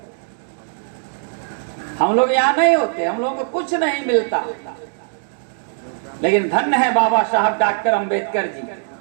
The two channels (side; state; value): left; silent; digital silence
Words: हम लोग यहाँ नहीं होते, हम लोगों को कुछ नहीं मिलता। लेकिन धन्य है बाबा साहब डॉक्टर अंबेडकर जी,